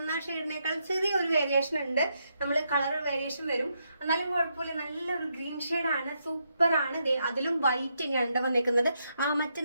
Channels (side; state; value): both; inverted; correlation -0.80